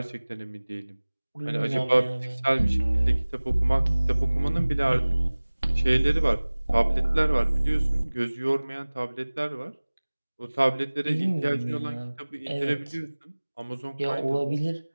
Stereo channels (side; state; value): both; inverted; correlation -1.00